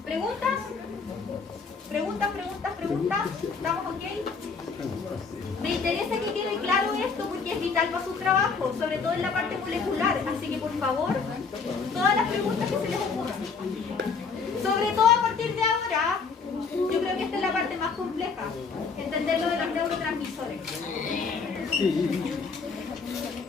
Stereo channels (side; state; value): right; quieter; 5.1 dB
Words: ¿Preguntas? ¿Preguntas? ¿Estamos ok? Me interesa que quede claro esto porque es vital para su trabajo, sobre todo en la parte molecular. Así que, por favor, todas las preguntas que se les ocurran. Sobre todo a partir de ahora, yo creo que esta es la parte más compleja, entender lo de los neurotransmisores.